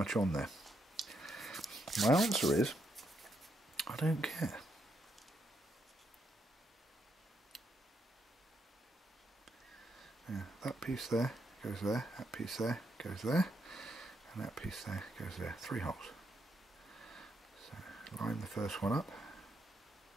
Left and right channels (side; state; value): both; normal; correlation 0.78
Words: on there. My answer is, I don't care. Now, that piece there goes there, that piece there goes there, and that piece there goes there. 3 holes. So line the first one up,